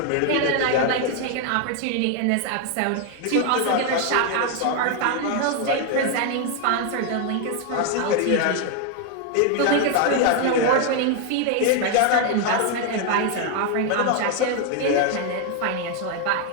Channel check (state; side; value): different; both; correlation 0.01